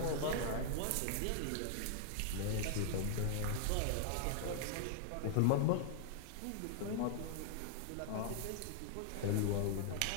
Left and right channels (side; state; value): both; different; correlation -0.01